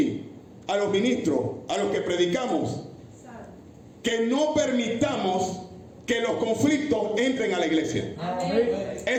a los ministros, a los que predicamos, que no permitamos que los conflictos entren a la iglesia.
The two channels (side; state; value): both; identical; correlation 1.00